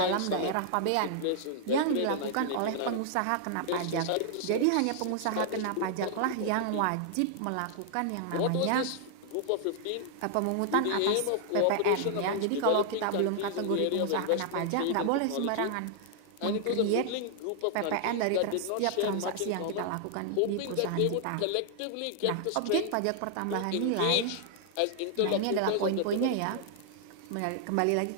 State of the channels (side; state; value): both; different; correlation 0.00